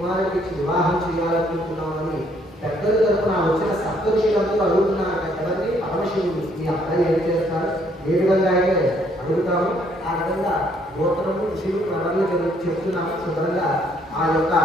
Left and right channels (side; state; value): both; normal; correlation 0.67